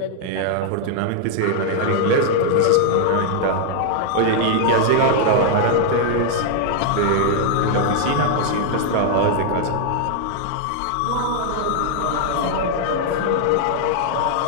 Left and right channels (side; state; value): both; different; correlation -0.01